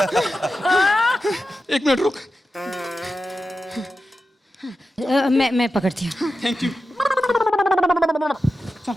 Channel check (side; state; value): both; normal; correlation 0.91